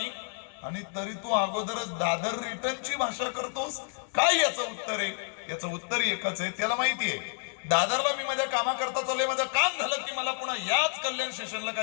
आणि तरी तू अगोदरच दादर रिटर्नची भाषा करतोस. काय याचं उत्तर आहे? याचं उत्तर एकच आहे, त्याला माहिती आहे दादरला मी माझ्या कामाकरता चाललोय, माझं काम झालं की मला पुन्हा याच कल्याण स्टेशनला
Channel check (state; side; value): silent; right; 58 dB below the other